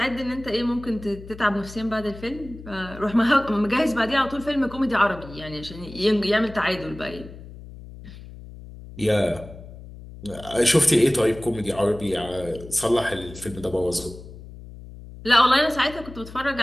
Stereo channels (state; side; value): noise; left; hum, 16 dB below the sound